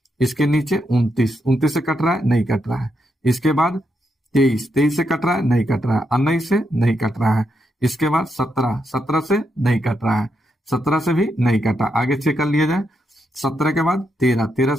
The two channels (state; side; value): normal; both; correlation 0.81